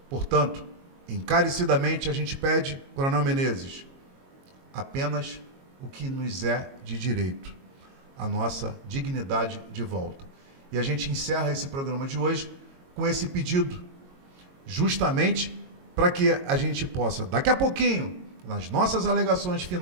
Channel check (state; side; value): late; left; 22 ms